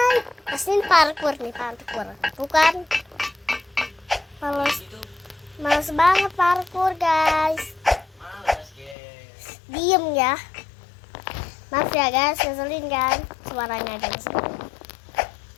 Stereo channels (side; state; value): right; drops out; at 9.0 s